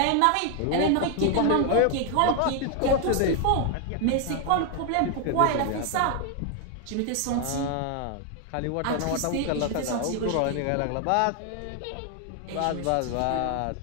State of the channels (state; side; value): different; both; correlation 0.00